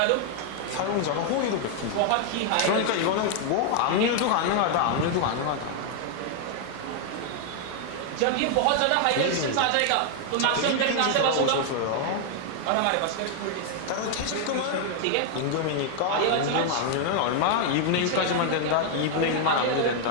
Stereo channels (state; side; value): different; both; correlation 0.00